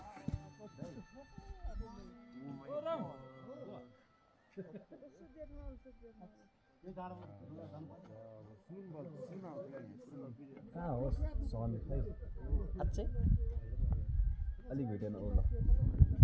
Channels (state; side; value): identical; both; correlation 1.00